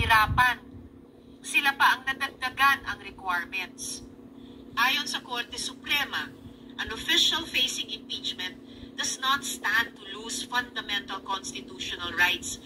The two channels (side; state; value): both; identical; correlation 1.00